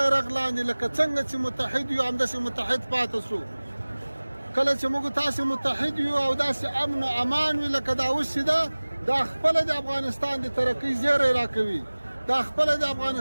لاندې لکه څنګه چې متحد یو همداسې متحد پاتې سو. کله چې موږ تاسې متحد یو او داسې امن او امان وي لکه دا اوس چې ده، دا خپله د افغانستان د ترقۍ زیری راکوي، دا خپله د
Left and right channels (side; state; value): both; inverted; correlation -1.00